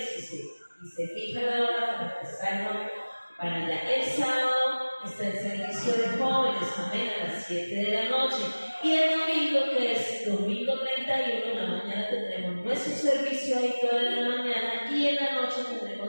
y se fija la hora para estar para allá. El sábado está el servicio de jóvenes, amén, a las 7 de la noche. Y el domingo, que es domingo 31, en la mañana tendremos nuestro servicio ahí toda la mañana, y en la noche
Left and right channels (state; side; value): inverted; both; correlation -1.00